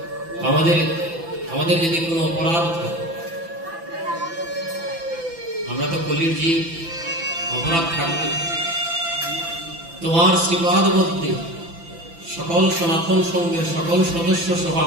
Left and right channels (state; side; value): late; left; 5.9 ms